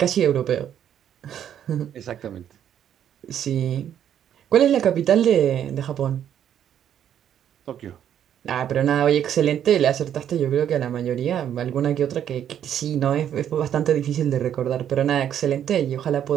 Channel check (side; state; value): left; quieter; 9.8 dB